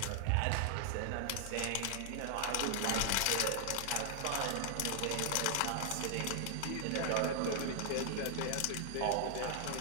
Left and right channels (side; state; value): both; different; correlation 0.00